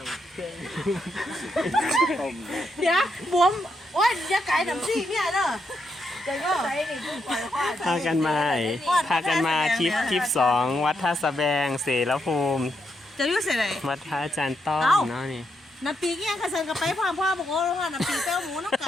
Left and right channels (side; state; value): both; normal; correlation 0.81